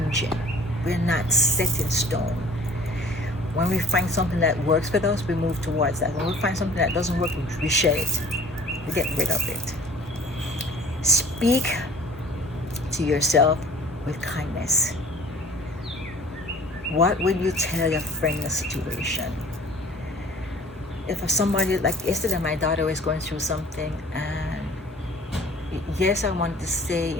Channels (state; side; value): normal; both; correlation 0.50